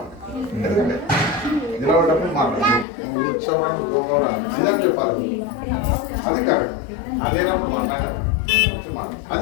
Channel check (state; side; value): drops out; right; at 2.9 s